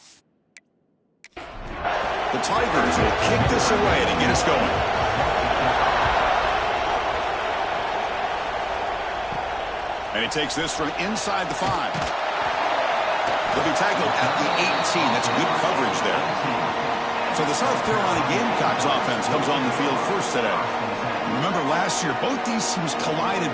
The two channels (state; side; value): identical; both; correlation 1.00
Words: The Tigers will kick this away to get us going. And he takes this from inside the 5. He'll be tackled at the 18. That's good coverage there. So the South Carolina Gamecocks offense comes on the field first today. Remember last year, both these teams collided